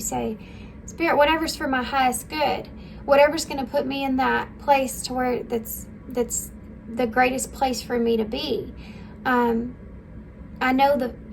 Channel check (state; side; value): identical; both; correlation 1.00